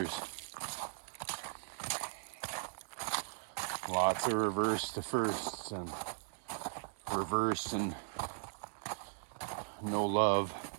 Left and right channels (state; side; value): silent; left; 52 dB below the other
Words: Lots of reverse to firsts and reverse and no love.